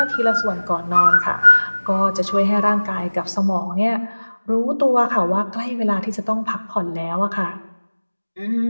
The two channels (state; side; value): inverted; both; correlation -1.00